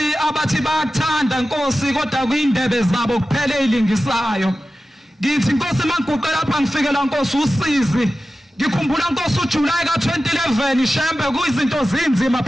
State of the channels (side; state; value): both; normal; correlation 0.94